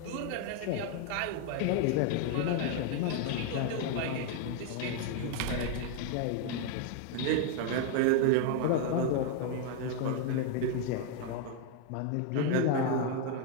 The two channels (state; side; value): different; both; correlation 0.00